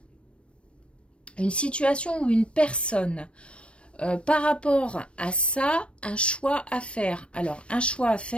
Une situation ou une personne... par rapport à ça, un choix à faire. Alors, un choix à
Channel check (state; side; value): late; right; 0.059 ms